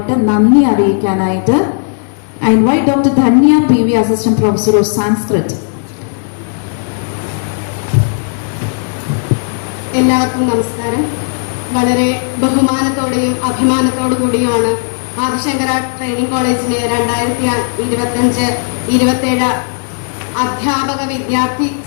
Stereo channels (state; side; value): silent; right; digital silence